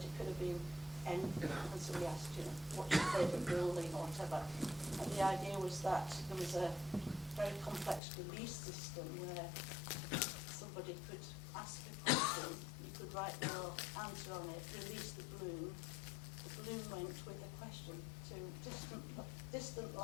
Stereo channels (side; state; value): right; drops out; at 8.0 s